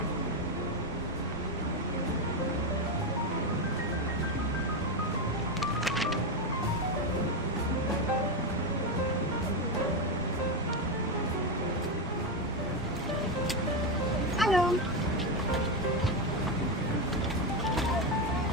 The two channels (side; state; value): both; normal; correlation 0.09